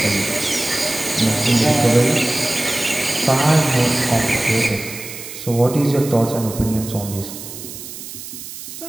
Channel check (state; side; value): noise; right; hiss, 12 dB below the sound